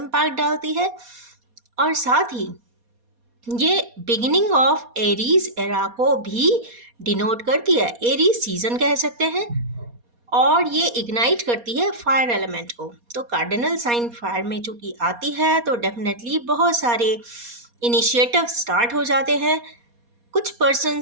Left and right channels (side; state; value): left; late; 4.2 ms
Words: डालती है। और साथ ही ये बिगिनिंग ऑफ एरीज एरा को भी डिनोट करती है। एरीज सीजन कह सकते हैं और ये इग्नाइट करती है फायर एलिमेंट को। तो कार्डिनल साइन फायर में चूंकि आती है तो डेफिनेटली बहुत सारे इनिशिएटिव स्टार्ट हो जाते हैं। कुछ